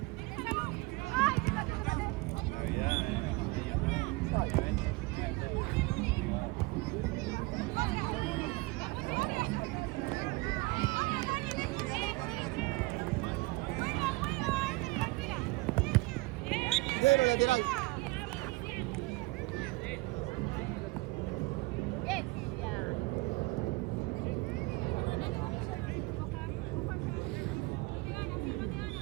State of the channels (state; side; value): quieter; left; 23.8 dB